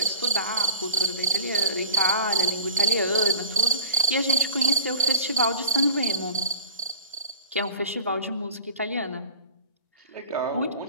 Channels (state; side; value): inverted; both; correlation -0.39